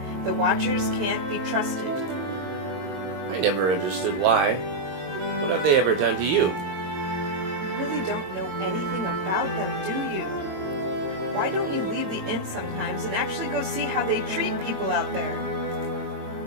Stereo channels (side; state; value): left; late; 22 ms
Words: The Watchers can't be trusted. I never understood why. What have they ever done to you? You really don't know anything about them, do you? Why don't you leave the inn sometimes and actually go see how they treat people out there?